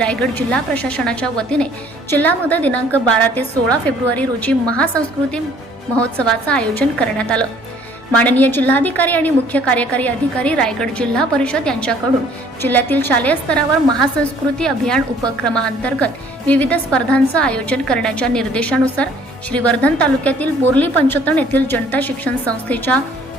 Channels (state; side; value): normal; both; correlation 0.58